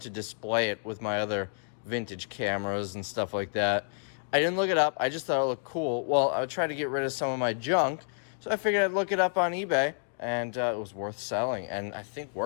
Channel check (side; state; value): right; silent; digital silence